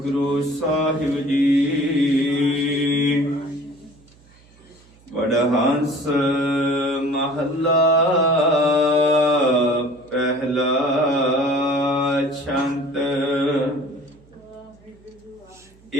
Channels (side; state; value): right; noise; hum, 28 dB below the sound